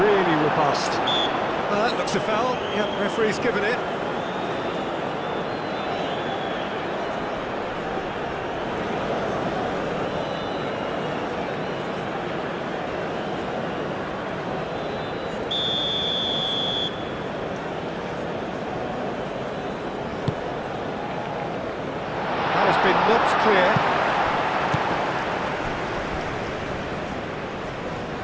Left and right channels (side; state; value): both; identical; correlation 1.00